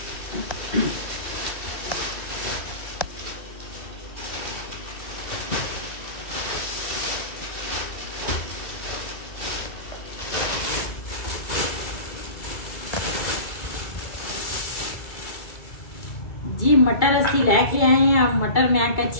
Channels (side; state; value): right; late; 2.3 ms